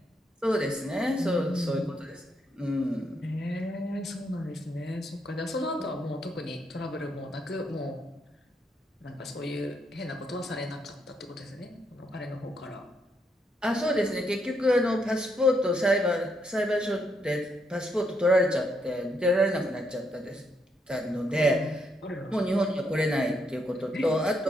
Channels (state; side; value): normal; both; correlation 0.77